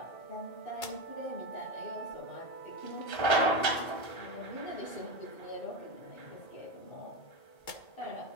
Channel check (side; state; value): right; late; 2.2 ms